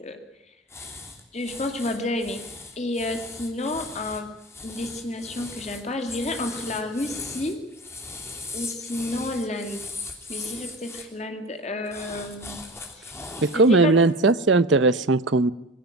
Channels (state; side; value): normal; both; correlation 0.32